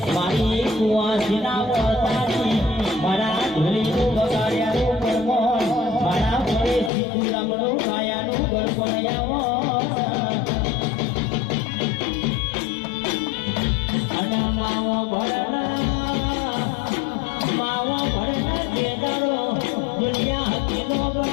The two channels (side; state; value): right; drops out; at 6.9 s